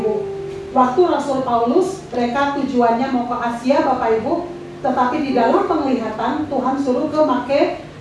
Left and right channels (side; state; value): both; identical; correlation 1.00